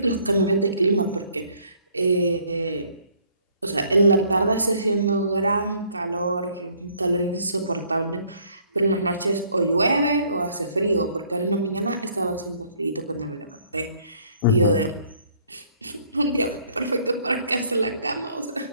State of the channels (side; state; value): both; inverted; correlation -0.62